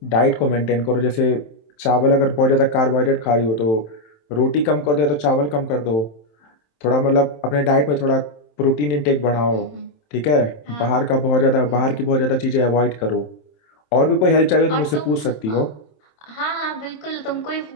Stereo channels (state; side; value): late; right; 27 ms